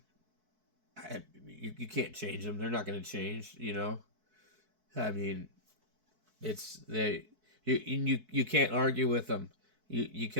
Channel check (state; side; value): late; left; 4.6 ms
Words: you can't change them. They're not going to change, I mean, you can't argue with them. You